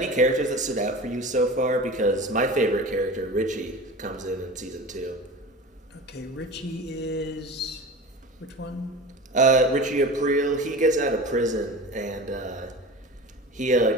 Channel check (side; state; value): both; normal; correlation 0.33